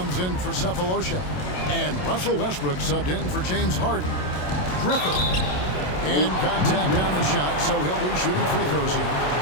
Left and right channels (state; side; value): late; right; 27 ms